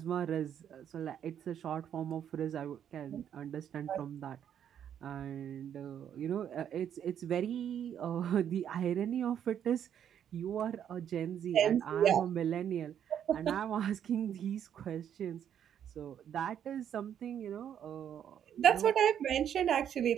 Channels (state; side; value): quieter; left; 9.3 dB